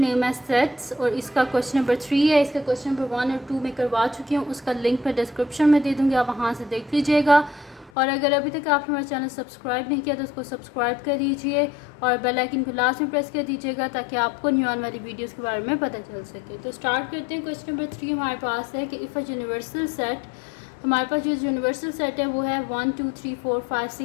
है सेट्स और इसका क्वेश्चन नंबर 3 है। इसका क्वेश्चन नंबर 1 और 2 में करवा चुकी हूँ, उसका लिंक मैं डिस्क्रिप्शन में दे दूँगी, आप वहाँ से देख लीजिएगा। और अगर अभी तक आपने हमारा चैनल सब्सक्राइब नहीं किया तो उसको सब्सक्राइब कर दीजिए और बेल आइकन को लास्ट में प्रेस कर दीजिएगा ताकि आपको न्यू आने वाली वीडियोस के बारे में पता चल सके। तो स्टार्ट करते हैं। क्वेश्चन नंबर 3 हमारे पास है कि इफ़ अ यूनिवर्सल सेट, हमारे पास जो यूनिवर्सल सेट है वो है 1 2 3 4 5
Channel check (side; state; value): right; drops out; at 7.9 s